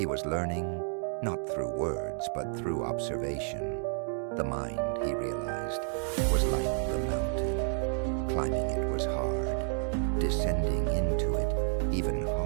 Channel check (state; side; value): silent; left; 57 dB below the other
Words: was learning, not through words, but through observation. The mind, he realized, was like the mountain. Climbing it was hard, descending into it even